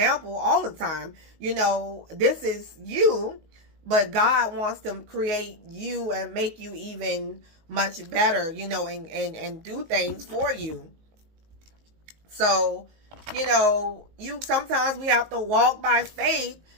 all the time. This is you, but God wants to create you and make you even much better, and do things for you. So, sometimes we have to walk by faith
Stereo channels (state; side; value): late; left; 19 ms